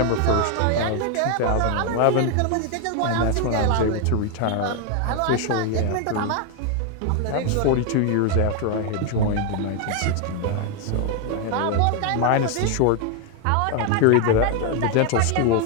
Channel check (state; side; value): different; both; correlation 0.01